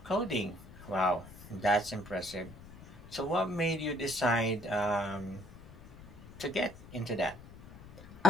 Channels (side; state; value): left; noise; rumble, 18 dB below the sound